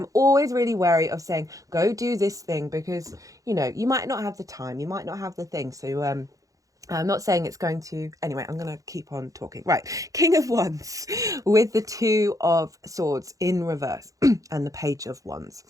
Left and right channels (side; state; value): left; late; 0.16 ms